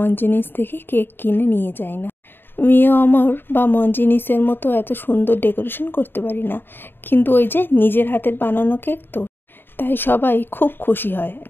থেকে কেক কিনে নিয়ে যাই না। মিও অমর বা মঞ্জিনিসের মতো এত সুন্দর ডেকোরেশন করতে পারি না, কিন্তু ওই যে নিজের হাতের বানানো কেক তো, তাই সবাই খুব খুশি হয়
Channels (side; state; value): right; late; 0.099 ms